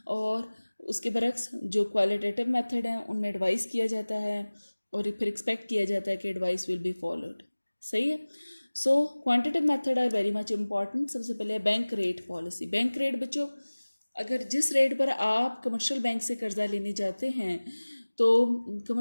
और उसके बरक्स जो क्वालिटेटिव मेथड है उनमें एडवाइस किया जाता है और फिर एक्सपेक्ट किया जाता है कि एडवाइस विल बी फॉलोड। सही है। So quantitative method are very much important. सबसे पहले bank rate policy. Bank rate बच्चों, अगर जिस रेट पर आप कमर्शियल बैंक से कर्जा लेने जाते हैं तो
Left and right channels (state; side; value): inverted; both; correlation -1.00